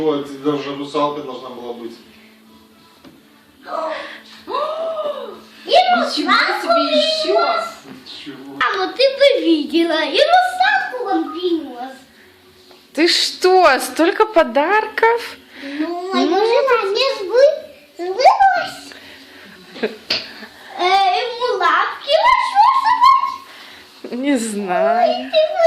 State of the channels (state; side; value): identical; both; correlation 1.00